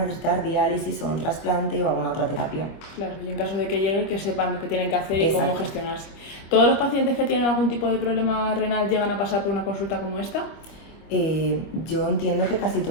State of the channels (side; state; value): right; late; 25 ms